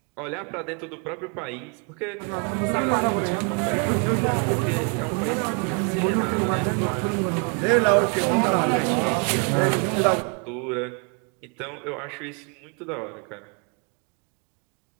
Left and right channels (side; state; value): left; quieter; 37.5 dB